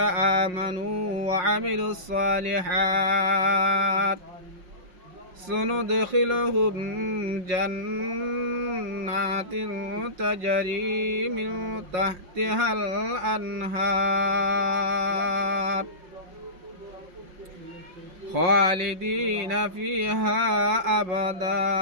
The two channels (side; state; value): left; late; 5.5 ms